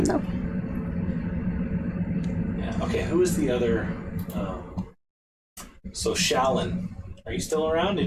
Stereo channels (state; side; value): identical; both; correlation 1.00